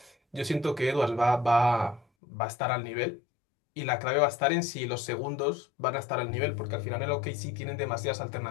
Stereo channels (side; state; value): right; drops out; at 2.1 s